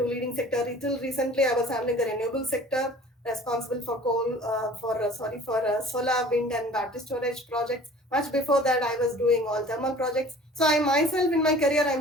leading sector. Until recently, I was handling the renewable sector. responsible for solar, wind, and battery storage projects. Much before that, I was doing all thermal projects. So I myself, in my career,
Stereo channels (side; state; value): both; normal; correlation 0.47